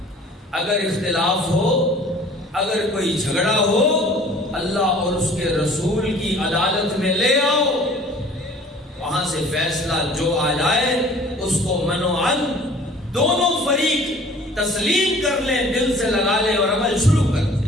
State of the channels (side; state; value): both; normal; correlation 0.50